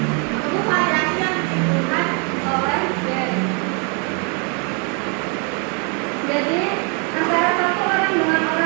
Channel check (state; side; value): quieter; left; 36.5 dB